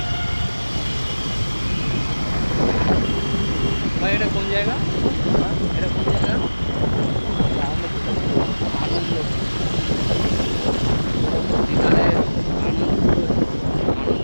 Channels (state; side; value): inverted; both; correlation -1.00